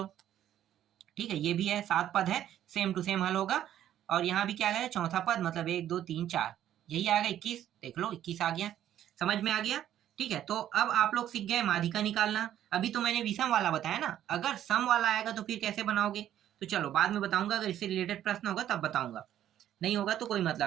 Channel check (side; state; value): left; quieter; 11.4 dB